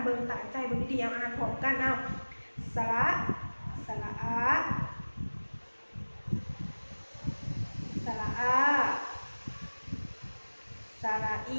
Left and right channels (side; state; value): both; inverted; correlation -1.00